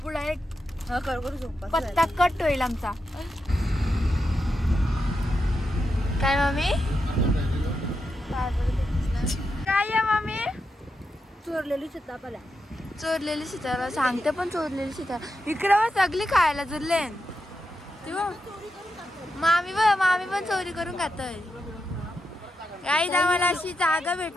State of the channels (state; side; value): normal; both; correlation 0.86